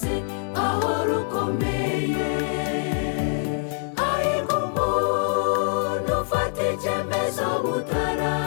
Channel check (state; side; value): silent; right; digital silence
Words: aho rukomeye. Hahirwa umuntu ufata icyemezo